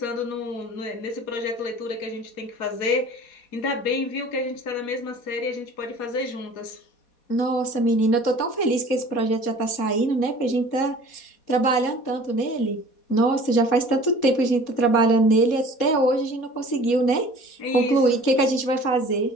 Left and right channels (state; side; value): late; right; 4.2 ms